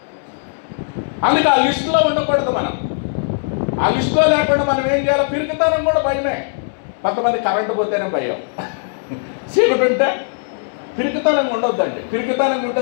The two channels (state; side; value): silent; right; digital silence